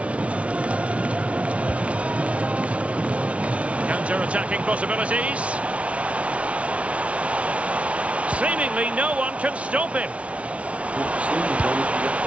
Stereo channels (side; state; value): left; late; 0.063 ms